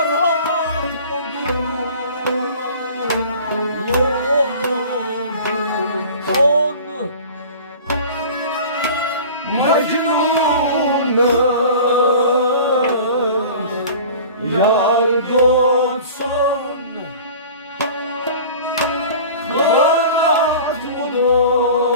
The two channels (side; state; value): both; inverted; correlation -0.41